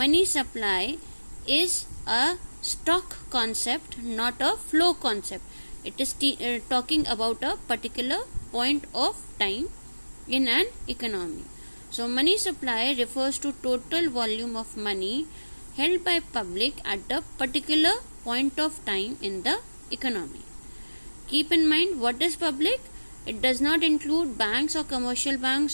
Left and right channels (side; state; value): both; inverted; correlation -1.00